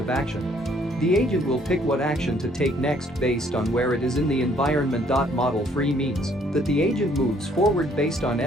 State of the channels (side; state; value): both; normal; correlation 0.64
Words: action. The agent will pick what action to take next based on where it is in the environment. Model-free means that the agent moves forward based on